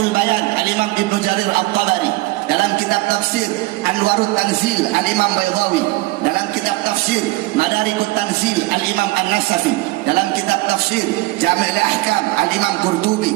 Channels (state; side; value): quieter; left; 20.3 dB